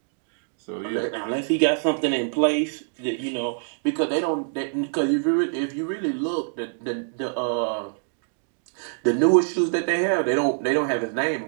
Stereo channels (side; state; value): left; silent; digital silence